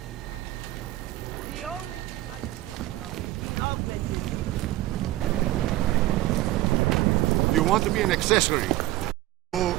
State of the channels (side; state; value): left; quieter; 16.5 dB